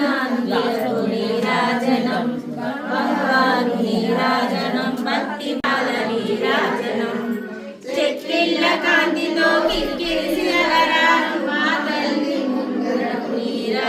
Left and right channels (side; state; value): both; identical; correlation 1.00